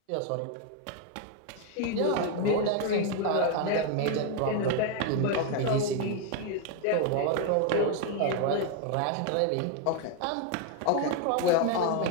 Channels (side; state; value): both; different; correlation 0.01